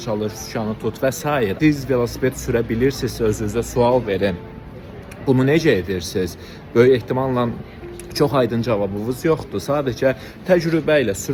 çalış, sükanı tut və s. Siz velosiped sürə bilirsiniz, özünüzə sual verin. Bunu necə edirsiniz? Böyük ehtimalla çox aydın cavabınız yoxdur. Sadəcə təcrübə ilə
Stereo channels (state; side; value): identical; both; correlation 1.00